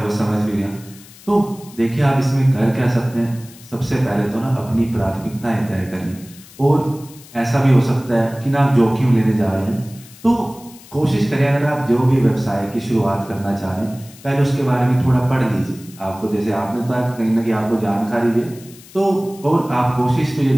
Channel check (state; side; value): noise; left; hiss, 21 dB below the sound